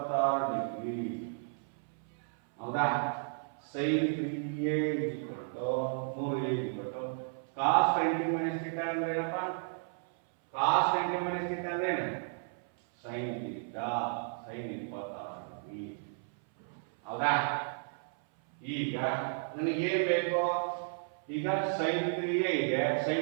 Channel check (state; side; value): silent; left; 56 dB below the other